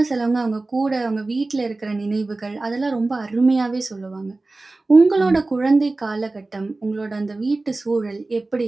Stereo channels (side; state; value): left; quieter; 3.2 dB